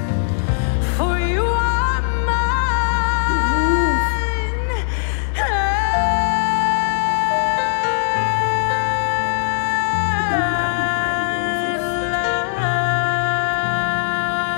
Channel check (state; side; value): silent; right; digital silence